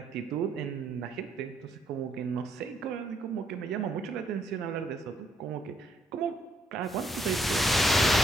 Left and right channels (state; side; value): normal; both; correlation 0.72